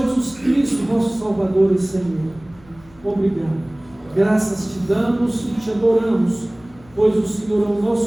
Cristo, nosso Salvador e Senhor. Obrigado. Graças te damos e te adoramos, pois o Senhor é o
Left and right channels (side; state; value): left; noise; hum, 26 dB below the sound